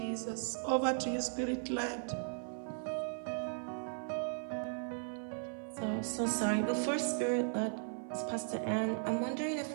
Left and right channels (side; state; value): left; silent; 53 dB below the other